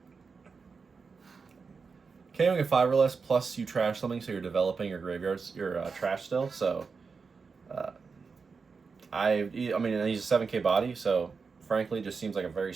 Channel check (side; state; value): left; quieter; 5.0 dB